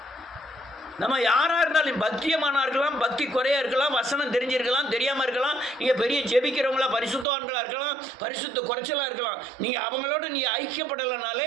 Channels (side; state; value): left; drops out; at 7.2 s